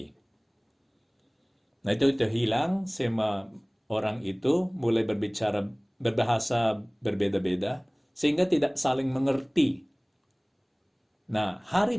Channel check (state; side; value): identical; both; correlation 1.00